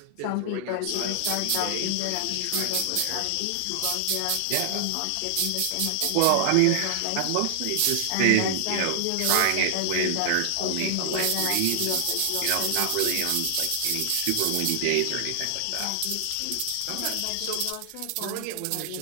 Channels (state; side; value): different; both; correlation 0.00